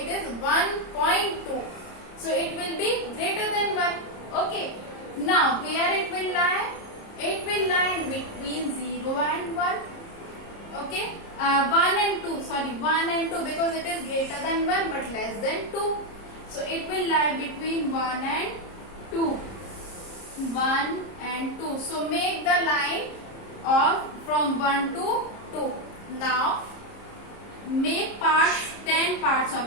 is 1.2. So it will be greater than 1. Okay. Now where it will lie? It will lie in between 0 and 1. Okay. 1 and 2. Sorry, 1 and 2 because it is greater than 1 but less than 2. So it will lie between 1 and 2. 1 and 2. So make the line of from 1 to 2. Now make parts, 10 parts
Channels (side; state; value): right; late; 30 ms